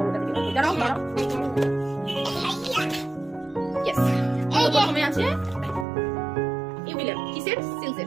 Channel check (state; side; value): drops out; left; at 5.9 s